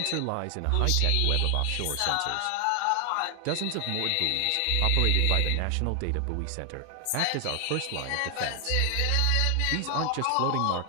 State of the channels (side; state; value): both; different; correlation 0.00